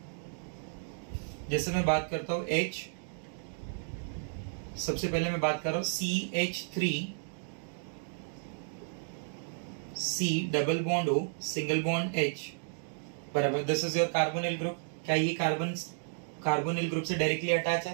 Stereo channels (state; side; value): silent; left; digital silence